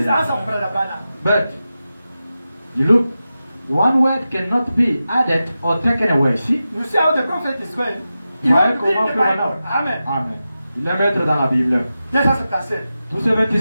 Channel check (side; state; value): both; inverted; correlation -0.92